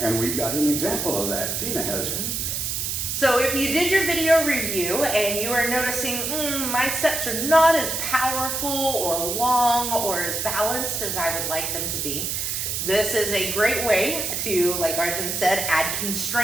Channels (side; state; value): right; noise; hiss, 2 dB below the sound